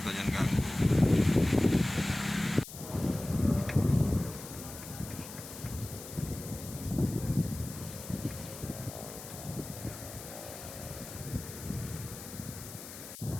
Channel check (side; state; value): left; noise; hiss, 13 dB below the sound